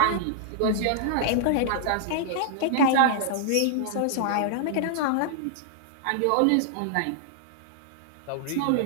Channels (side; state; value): both; different; correlation -0.01